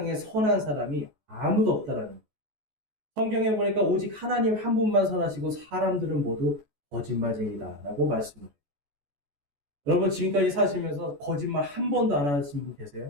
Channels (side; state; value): left; late; 14 ms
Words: 선한 사람이 아무도 없다라는 거예요. 성경에 보니까 오직 하나님 한 분만 선하시고 사람들은 모두 거짓말쟁이다라고 말씀을 해요. 여러분, 지금까지 사시면서 거짓말 한 번도 안 하신 분